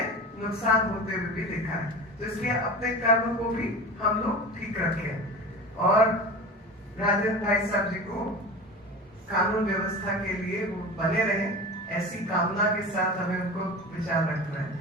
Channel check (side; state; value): both; normal; correlation 0.32